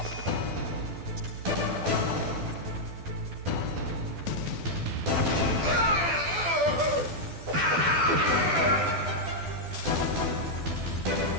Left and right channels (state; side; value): late; left; 12 ms